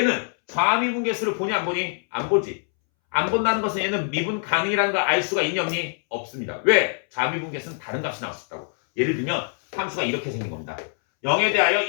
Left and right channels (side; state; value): right; silent; 63 dB below the other